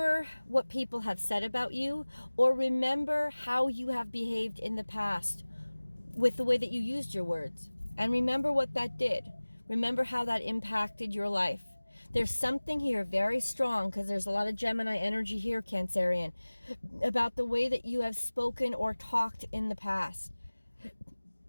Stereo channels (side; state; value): both; inverted; correlation -1.00